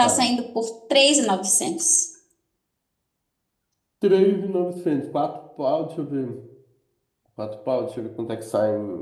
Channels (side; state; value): both; identical; correlation 1.00